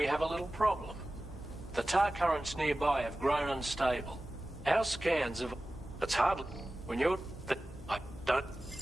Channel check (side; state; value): both; normal; correlation 0.96